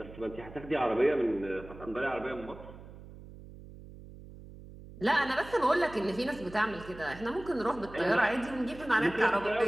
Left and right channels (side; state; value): right; noise; hum, 16 dB below the sound